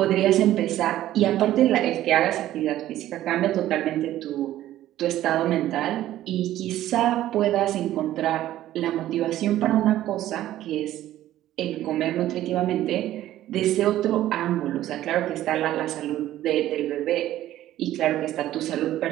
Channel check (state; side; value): quieter; left; 13.6 dB